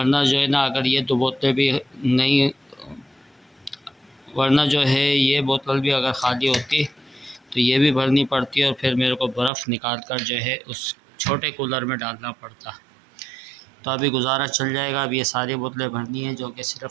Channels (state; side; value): drops out; left; at 9.5 s